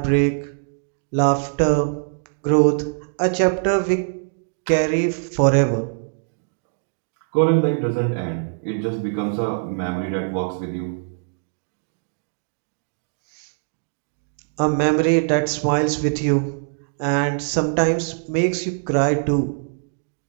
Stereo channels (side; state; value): left; silent; digital silence